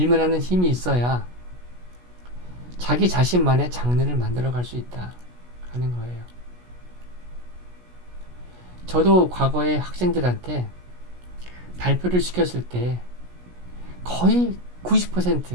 힘이 있어야 자기 자신만의 장르를 만들어갈 수 있다 하는 거예요. 저도 과거에 학생들한테 발표를 시켰을 때 거의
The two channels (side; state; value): left; late; 16 ms